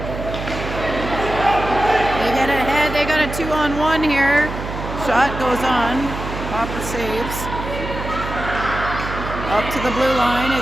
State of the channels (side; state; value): right; noise; hum, 7 dB below the sound